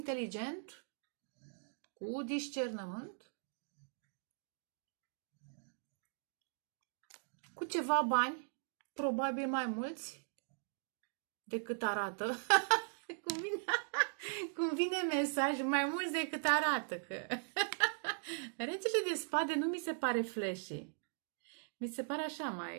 cu discernământ, cu ceva bani, probabil mai mulți decât arată. Cum vine mesaj, mai mulți decât arată. Că... Regele de spade nu mi se pare flashy. Mi se pare așa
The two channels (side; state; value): left; silent; digital silence